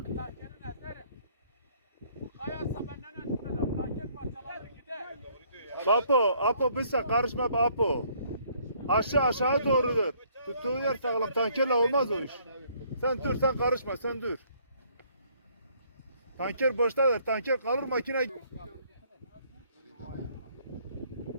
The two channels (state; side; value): inverted; both; correlation -0.64